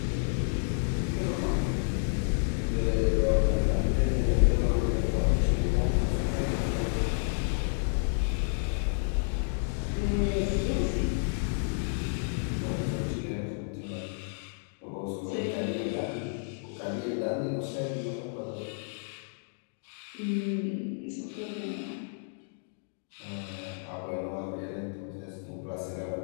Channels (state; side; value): silent; right; digital silence